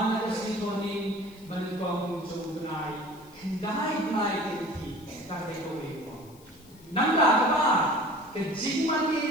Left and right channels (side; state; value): left; noise; hiss, 26 dB below the sound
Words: là cái gì thôi nên mình còn trong ngày đái ngày cái kỳ ta cái câu ấy nang là cái chính mà